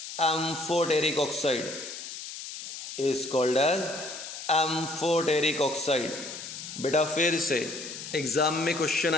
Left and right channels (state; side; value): noise; left; hiss, 10 dB below the sound